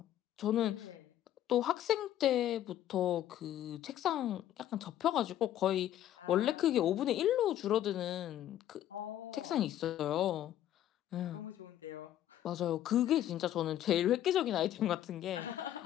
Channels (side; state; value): right; quieter; 12.0 dB